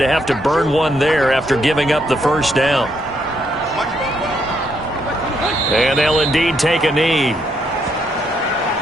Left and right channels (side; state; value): both; normal; correlation 0.75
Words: to have to burn one there after giving up the first down. And they'll indeed take a knee.